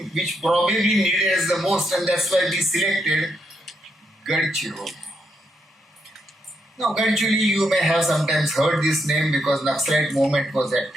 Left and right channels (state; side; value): normal; both; correlation 0.79